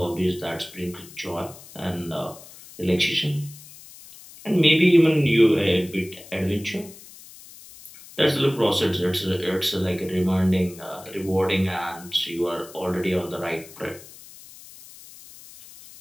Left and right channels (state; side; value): noise; left; hiss, 19 dB below the sound